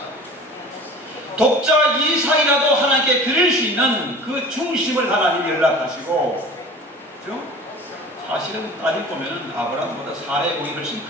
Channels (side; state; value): both; normal; correlation 0.40